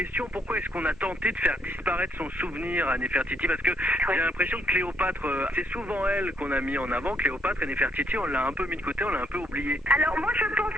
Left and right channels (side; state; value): both; normal; correlation 0.71